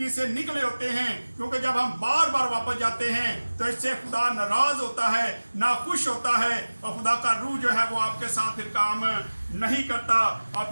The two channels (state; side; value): inverted; both; correlation -1.00